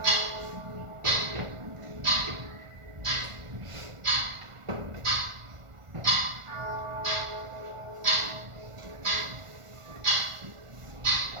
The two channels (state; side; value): late; left; 1.4 ms